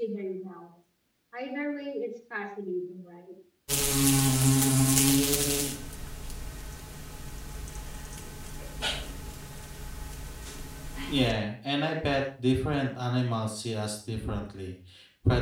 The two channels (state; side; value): identical; both; correlation 1.00